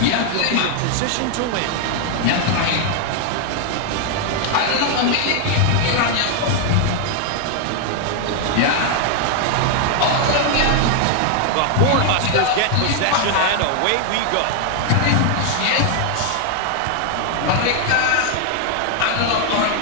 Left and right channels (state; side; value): different; both; correlation 0.00